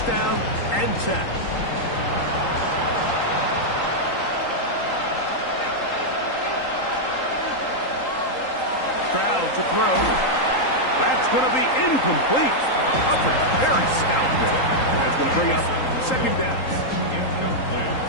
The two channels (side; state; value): right; late; 3.8 ms